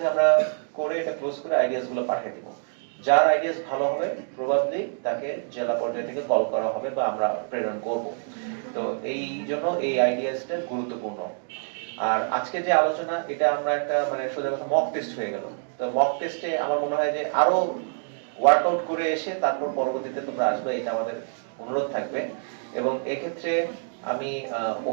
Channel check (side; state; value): left; silent; digital silence